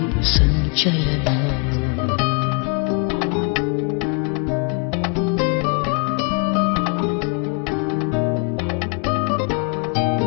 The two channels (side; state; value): right; quieter; 36.1 dB